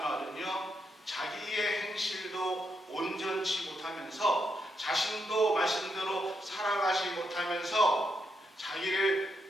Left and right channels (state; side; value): normal; both; correlation 0.81